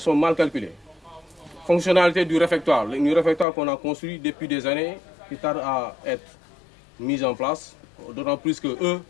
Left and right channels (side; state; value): right; drops out; at 3.5 s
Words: sont mal calculées. Fonctionnalité du réfectoire. Le réfectoire qu'on a construit depuis des années, qui tarde à être mis en place, d'autant plus que eux,